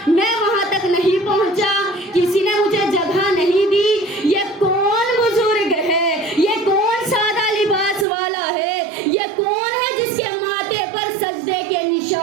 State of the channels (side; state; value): left; drops out; at 8.1 s